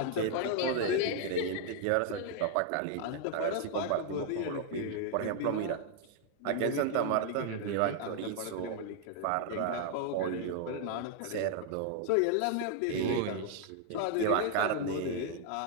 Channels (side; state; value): both; different; correlation 0.00